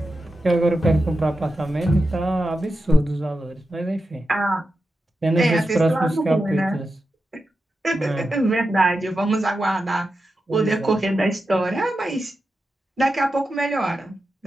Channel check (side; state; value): both; normal; correlation 0.90